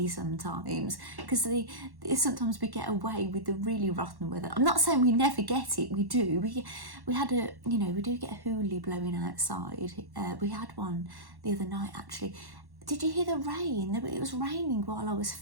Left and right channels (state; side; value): late; left; 1.1 ms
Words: sometimes, because sometimes we get away with the really rotten weather. I'm not saying we never get it, we do. We had a, you know, we do get a hoolie blowing outside. We had one the other night actually. Did you hear the rain? It was raining while I was